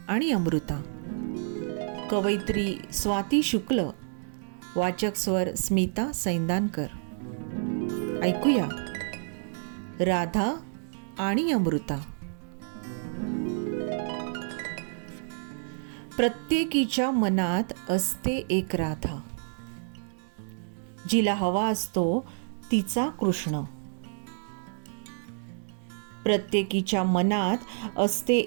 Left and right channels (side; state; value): left; silent; digital silence